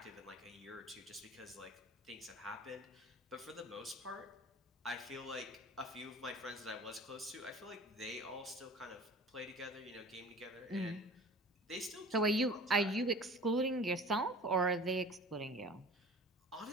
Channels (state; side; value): normal; both; correlation 0.42